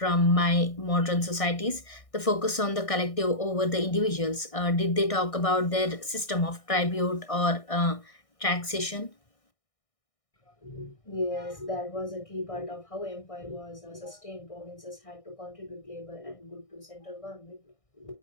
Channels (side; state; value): right; late; 1.6 ms